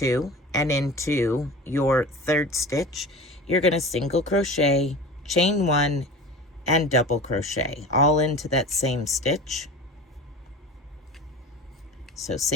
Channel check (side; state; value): both; normal; correlation 0.35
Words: and into your third stitch you're going to single crochet, chain 1, and double crochet all into that same stitch. So